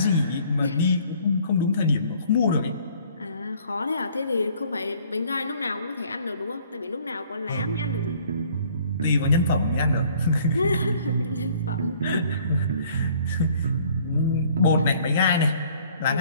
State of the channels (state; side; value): inverted; both; correlation -0.57